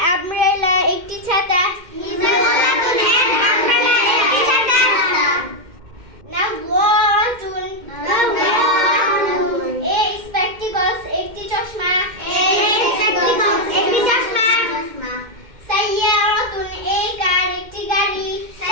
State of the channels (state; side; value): late; left; 2.1 ms